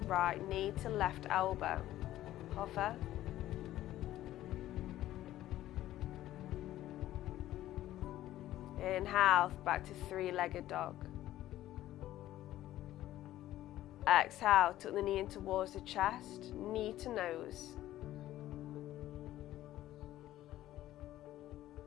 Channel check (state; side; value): quieter; right; 14.0 dB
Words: right knee to left elbow, hover. Inhale, back to three-legged dog. Exhale, tuck the knee in towards the chest, knee to nose.